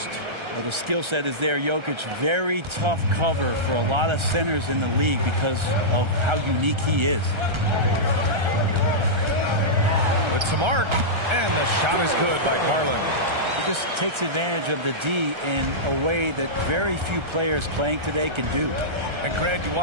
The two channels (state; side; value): late; left; 1.3 ms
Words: Well, the skill set is there. Jokic, very tough cover for a lot of centers in the league because of how unique he is. With some arc. And the shot is good by Garland. He just takes advantage of the D in a way that very few players playing today can do. And Grant, you